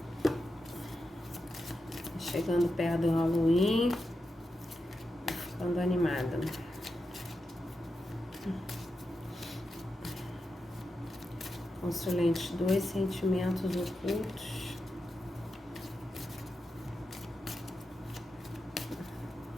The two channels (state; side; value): normal; both; correlation 0.88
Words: Chegando perto do Halloween. Ficando animada. Consulente 2, sentimentos ocultos.